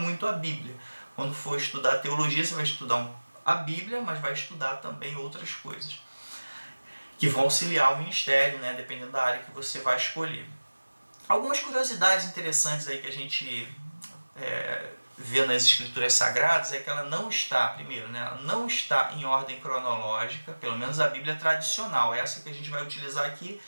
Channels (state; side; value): inverted; both; correlation -1.00